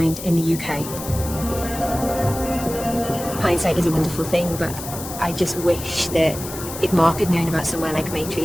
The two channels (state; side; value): noise; left; hiss, 10 dB below the sound